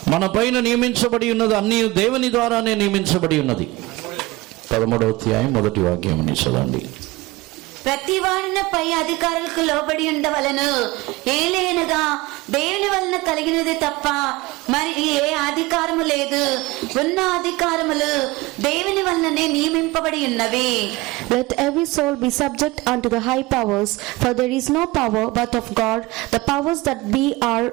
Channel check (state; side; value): quieter; left; 21.0 dB